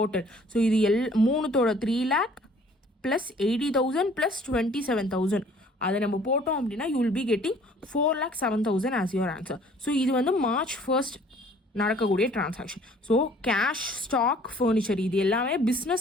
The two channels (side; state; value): both; normal; correlation 0.55